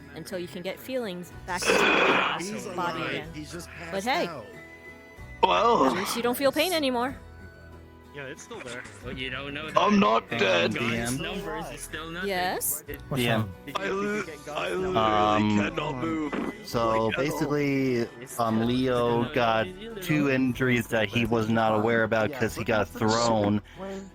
until you can get feelings back into your body again. But hey, Well, at least you don't feel pain anymore. Yeah, it's still there. But you don't know I'm not dead. God's numbers is still nothing. Yes? DM. I literally cannot move. So basically, Leo got 2 injuries that he was not aware about because he got thrown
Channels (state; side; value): identical; both; correlation 1.00